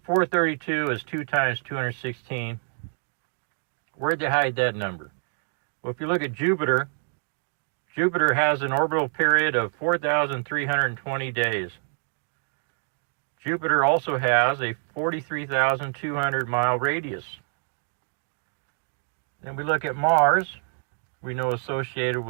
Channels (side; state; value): left; silent; 61 dB below the other